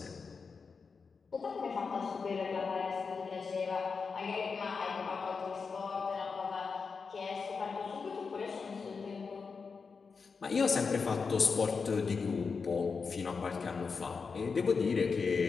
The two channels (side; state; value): right; quieter; 5.1 dB